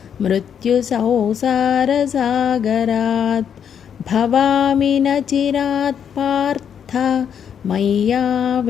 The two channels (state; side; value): quieter; right; 8.1 dB